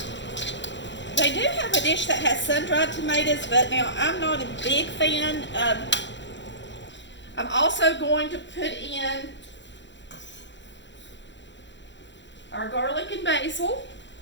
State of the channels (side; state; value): right; late; 0.53 ms